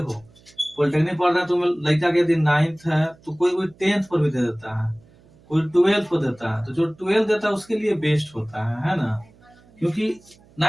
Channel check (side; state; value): right; noise; hum, 28 dB below the sound